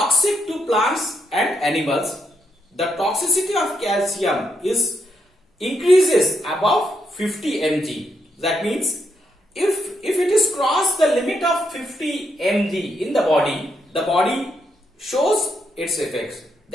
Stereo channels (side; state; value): both; normal; correlation 0.78